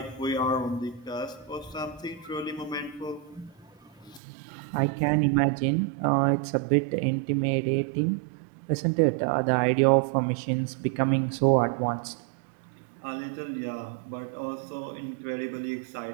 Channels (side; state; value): left; drops out; at 4.2 s